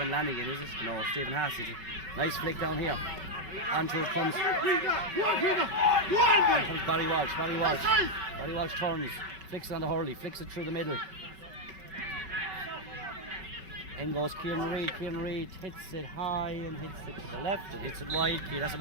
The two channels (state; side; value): late; left; 5.3 ms